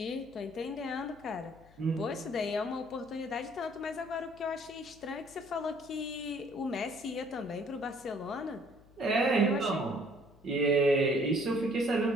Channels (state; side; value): noise; left; hum, 26 dB below the sound